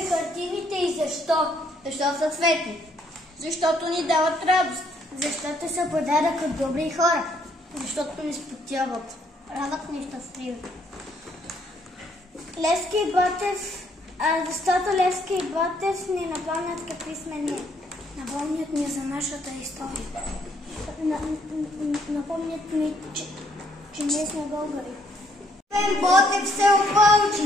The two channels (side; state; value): both; normal; correlation 0.68